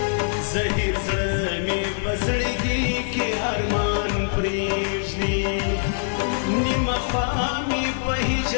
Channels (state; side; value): silent; right; digital silence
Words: زهیر زړه می په زړګي کې ارمان پریږدي نیم خوا می په